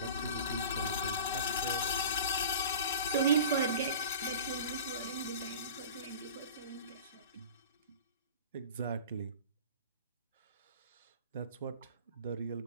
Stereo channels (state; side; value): inverted; both; correlation -0.39